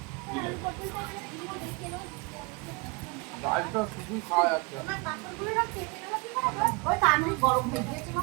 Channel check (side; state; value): left; quieter; 29.2 dB